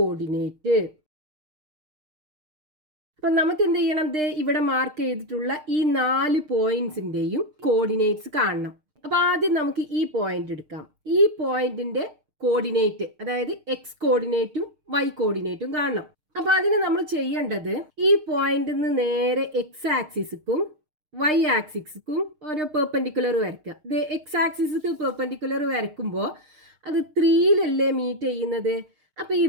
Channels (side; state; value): left; late; 6.6 ms